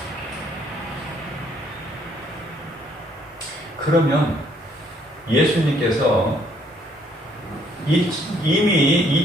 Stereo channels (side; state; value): both; normal; correlation 0.66